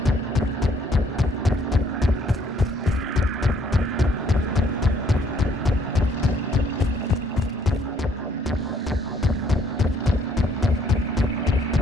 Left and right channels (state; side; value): normal; both; correlation 0.65